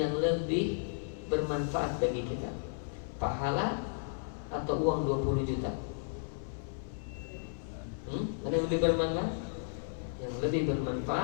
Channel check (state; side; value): silent; right; 55 dB below the other